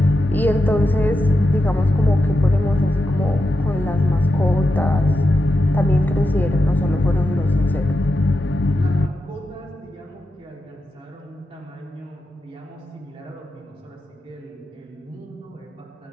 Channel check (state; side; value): normal; both; correlation 0.88